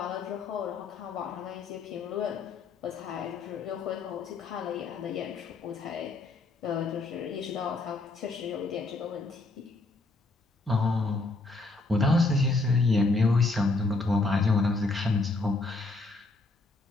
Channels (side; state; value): right; quieter; 3.4 dB